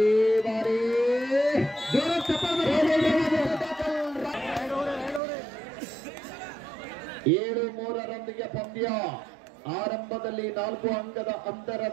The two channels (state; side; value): drops out; left; at 5.2 s